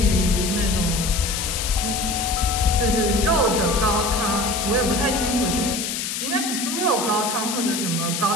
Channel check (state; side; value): noise; left; hiss, 3 dB below the sound